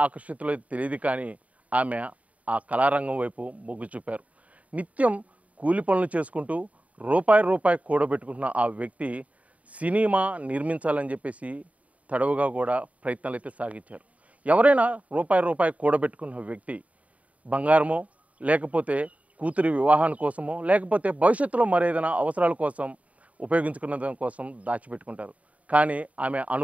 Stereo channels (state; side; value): late; left; 0.069 ms